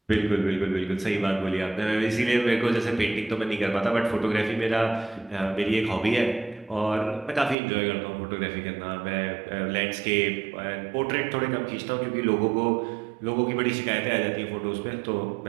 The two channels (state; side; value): drops out; left; at 7.6 s